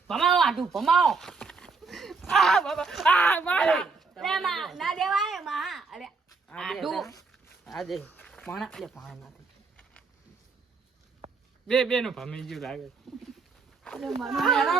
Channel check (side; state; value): left; quieter; 4.5 dB